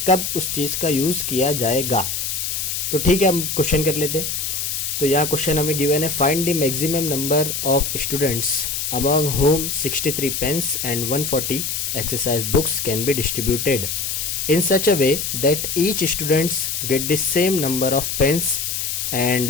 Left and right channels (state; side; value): noise; left; hiss, 2 dB below the sound